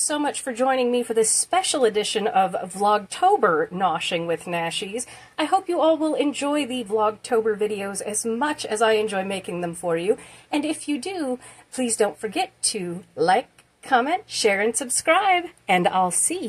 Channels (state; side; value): identical; both; correlation 1.00